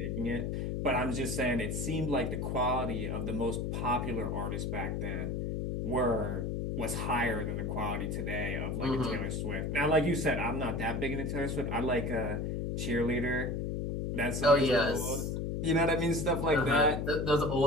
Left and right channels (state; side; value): noise; left; hum, 1 dB below the sound